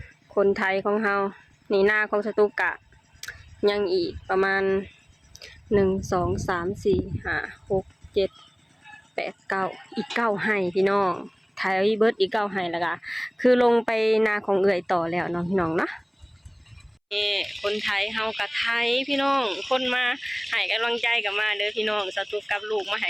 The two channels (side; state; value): both; identical; correlation 1.00